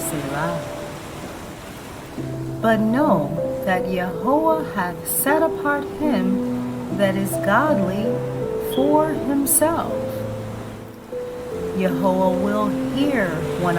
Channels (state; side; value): identical; both; correlation 1.00